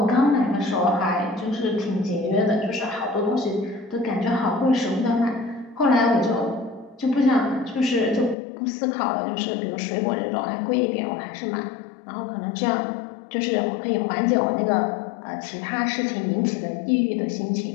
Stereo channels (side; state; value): right; drops out; at 8.3 s